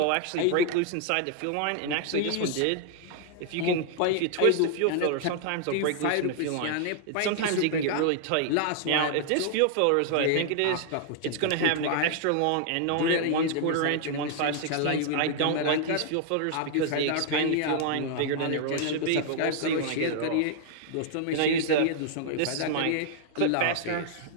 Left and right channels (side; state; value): both; different; correlation 0.00